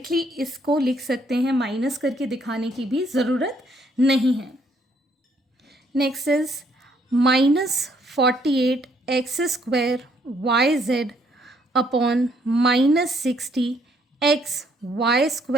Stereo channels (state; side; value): normal; both; correlation 0.68